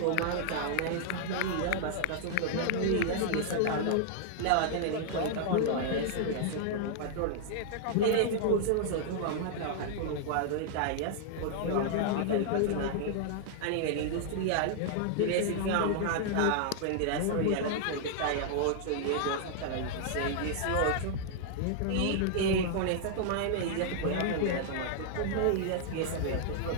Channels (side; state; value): both; different; correlation -0.01